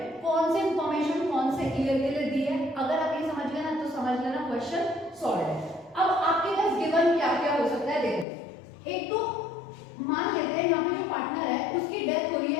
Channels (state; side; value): drops out; right; at 8.2 s